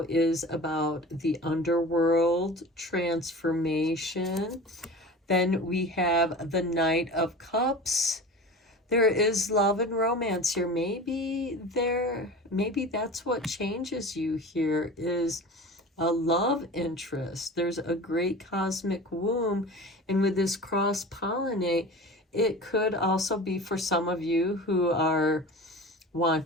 is about the underworld, transformation. Then we have the Knight of Cups. There is love and romance here. Maybe that's what changes you here, is a love interest. There's a great cosmic womb. And with this cross-pollinate, it could also be for some of you who are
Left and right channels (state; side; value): normal; both; correlation 0.35